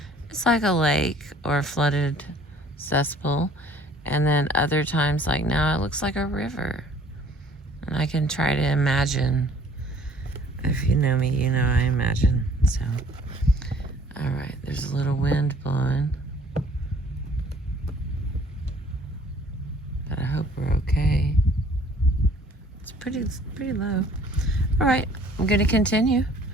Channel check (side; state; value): both; normal; correlation 0.55